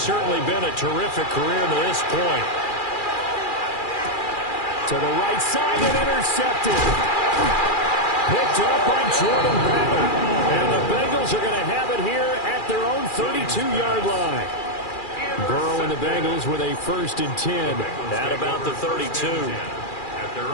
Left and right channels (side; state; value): right; late; 2.4 ms